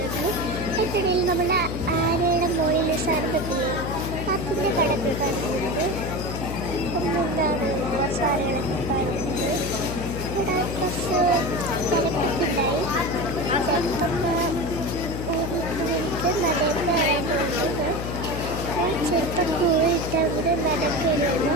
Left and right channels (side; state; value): left; noise; hum, 5 dB below the sound